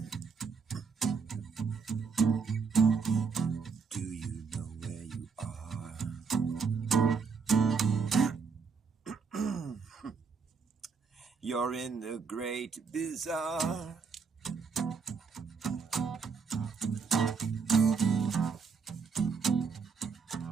Do you know where you are? You're in the great bazaar.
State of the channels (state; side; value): quieter; left; 5.4 dB